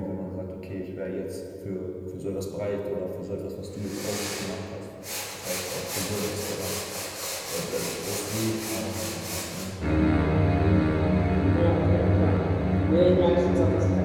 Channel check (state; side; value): identical; both; correlation 1.00